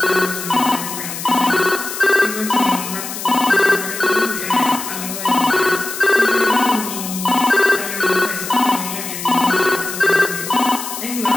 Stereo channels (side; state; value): left; noise; hiss, 8 dB below the sound